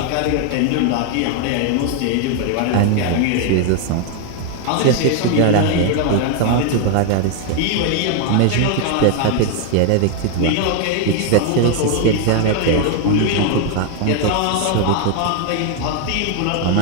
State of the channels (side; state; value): both; different; correlation 0.00